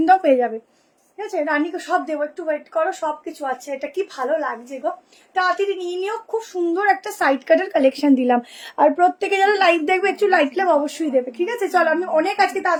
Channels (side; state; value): both; identical; correlation 1.00